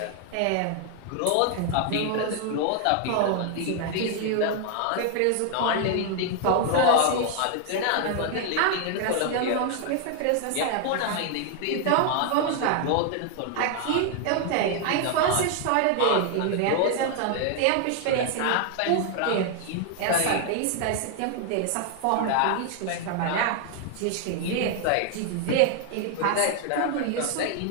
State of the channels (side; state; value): both; different; correlation 0.00